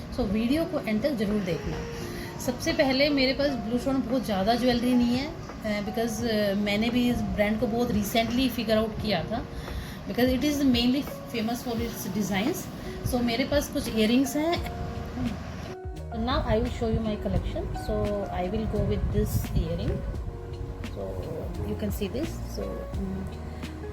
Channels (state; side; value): identical; both; correlation 1.00